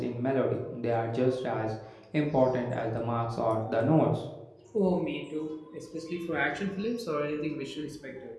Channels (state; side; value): identical; both; correlation 1.00